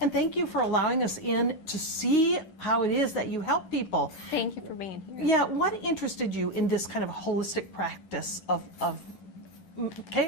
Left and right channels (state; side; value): late; right; 10 ms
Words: And thank you for allowing us in to see how it is that you help people. Thank you for being here. Yeah, what interested you in this kind of holistic practice of